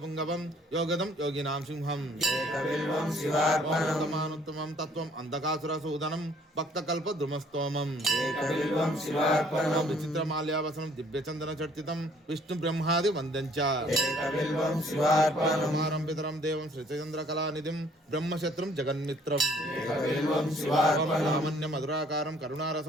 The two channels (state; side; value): normal; both; correlation 0.60